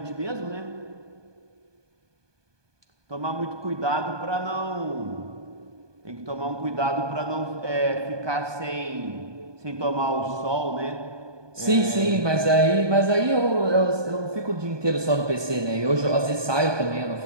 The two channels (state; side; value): late; left; 1.2 ms